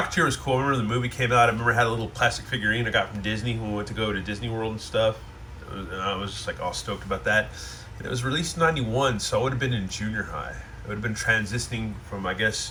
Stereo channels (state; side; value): identical; both; correlation 1.00